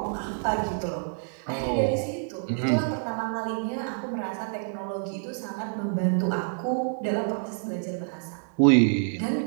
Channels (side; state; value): left; silent; digital silence